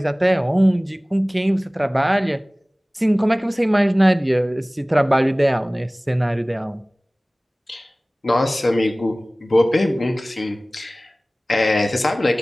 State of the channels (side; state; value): both; normal; correlation 0.98